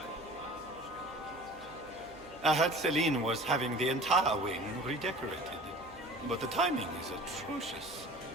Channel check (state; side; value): noise; right; hum, 23 dB below the sound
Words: I heard Celine was having the entire wing redecorated. But the timing is atrocious.